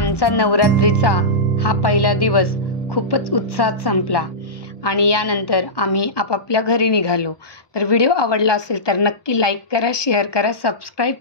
नवरात्रीचा हा पहिला दिवस खूपच उत्साहात संपला आणि यानंतर आम्ही आपापल्या घरी निघालो। तर व्हिडिओ आवडला असेल तर नक्की लाईक करा, शेअर करा, सबस्क्राईब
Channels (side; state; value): right; late; 1.2 ms